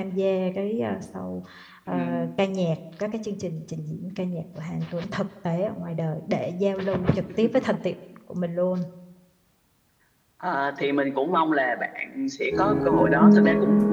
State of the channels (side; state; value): both; identical; correlation 1.00